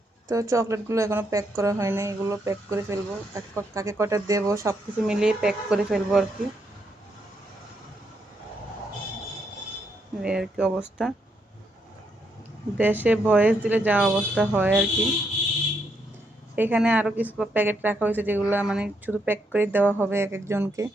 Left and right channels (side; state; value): both; normal; correlation 0.77